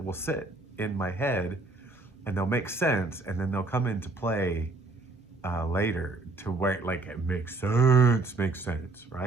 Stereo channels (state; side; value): quieter; left; 3.2 dB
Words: will sit in my head and they'll make sense, and then they'll come into play later to where, like, it makes sense,